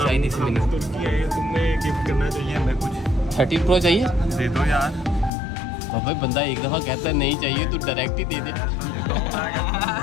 नहीं सी मिली। तुर्की है, तुमने गिफ्ट करना चाहिए हमें कुछ। 13 Pro चाहिए दे दो यार। बाबे बंदा एक दफ़ा कहता है नहीं चाहिए तो डायरेक्ट ही दे दे।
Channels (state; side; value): drops out; right; at 5.3 s